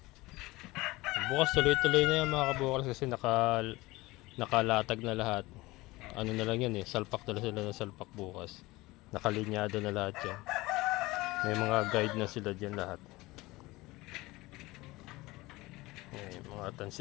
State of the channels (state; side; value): quieter; right; 20.6 dB